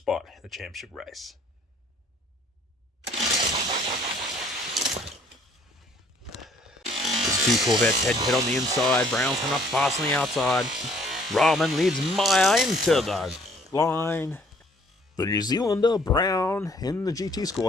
in the championship race. There's 2 Corvettes head-to-head on the inside. Brown's coming up fast on the outside. Rahman leads Maya into the line. The New Zealander, Brown, in the GT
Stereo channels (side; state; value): both; normal; correlation 0.60